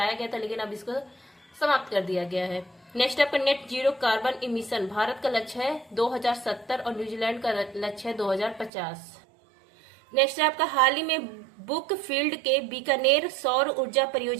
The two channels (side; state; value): left; drops out; at 8.7 s